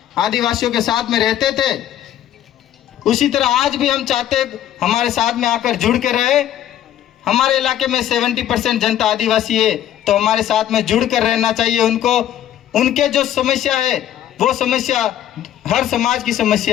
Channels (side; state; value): right; quieter; 11.5 dB